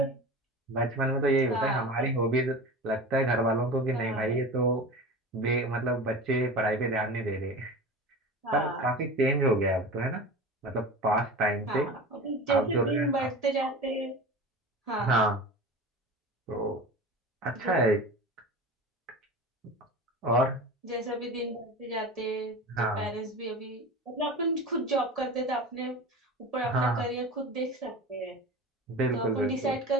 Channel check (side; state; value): both; normal; correlation 0.32